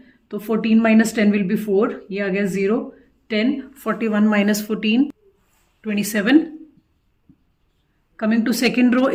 तो 14 माइनस 10 विल बी 4, ये आ गया 0. 10, 41 minus 14, 27. Coming to second row,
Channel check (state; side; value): identical; both; correlation 1.00